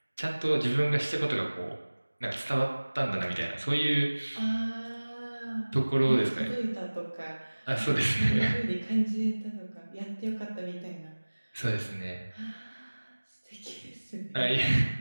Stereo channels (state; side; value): inverted; both; correlation -1.00